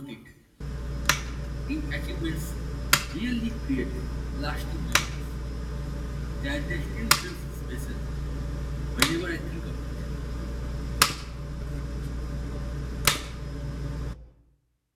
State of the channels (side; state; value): both; identical; correlation 1.00